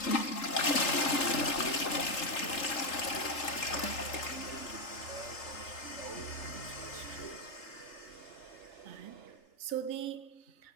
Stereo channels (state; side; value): late; right; 3.8 ms